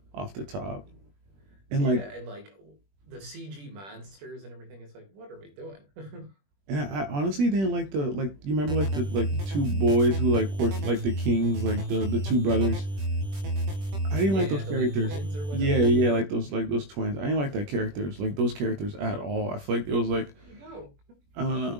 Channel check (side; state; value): left; late; 21 ms